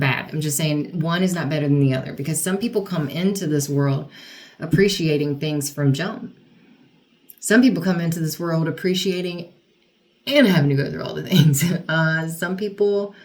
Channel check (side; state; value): both; identical; correlation 1.00